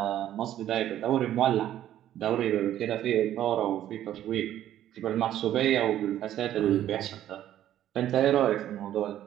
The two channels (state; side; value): quieter; left; 12.0 dB